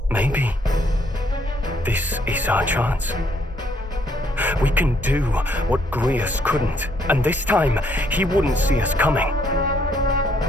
Maybe this is our chance. We can do what Grius couldn't, and this time he wouldn't see us coming.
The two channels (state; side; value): normal; both; correlation 0.69